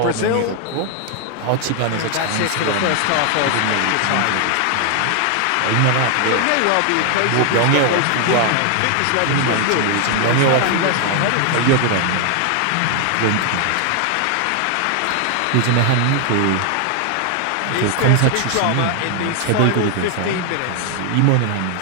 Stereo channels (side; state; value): both; different; correlation 0.00